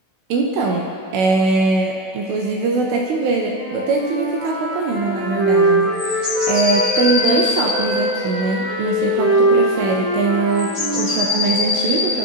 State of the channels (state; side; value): late; left; 16 ms